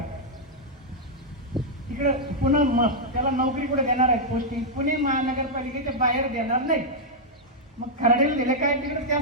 तिकडे पुन्हा त्याला नोकरी कुठे देणार आहेत, पोस्टिंग पुणे महानगरपालिकेच्या बाहेर देणार नाही. मग खराडीला दिले काय, तिकडे त्या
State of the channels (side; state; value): both; normal; correlation -0.04